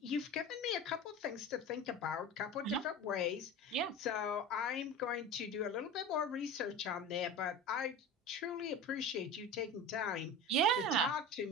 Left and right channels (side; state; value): both; normal; correlation 0.31